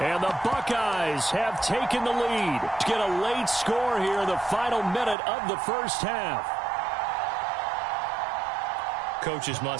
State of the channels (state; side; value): drops out; left; at 5.2 s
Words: the Buckeyes have taken the lead to get a late score here in the final minute of the first half. Coaches